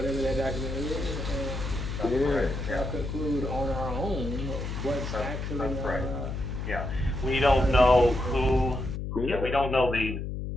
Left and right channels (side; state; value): left; noise; hum, 4 dB below the sound